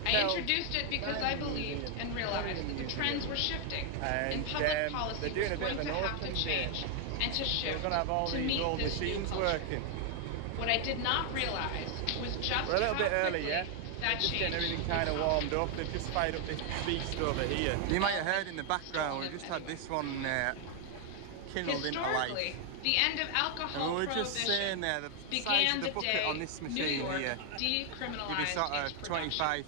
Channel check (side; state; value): both; different; correlation 0.00